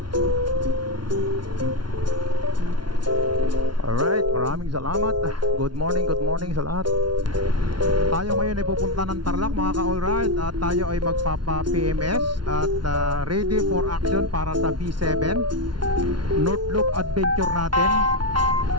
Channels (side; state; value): left; late; 0.71 ms